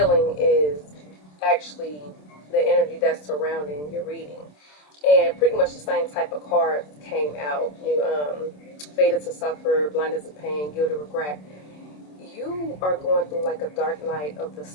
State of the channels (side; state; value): right; late; 27 ms